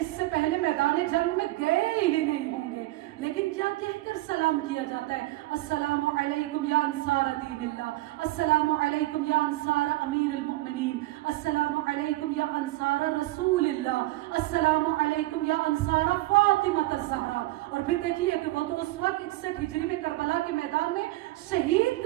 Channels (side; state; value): left; quieter; 18.5 dB